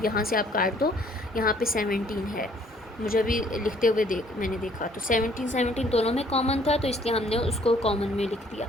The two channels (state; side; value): normal; both; correlation 0.61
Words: यहाँ से आप काट दो, यहाँ पे 17 है, मुझे अभी लिखते हुए मैंने देखा, तो 17 दोनों में कॉमन था, तो इसलिए हमने उसको कॉमन में लिख दिया।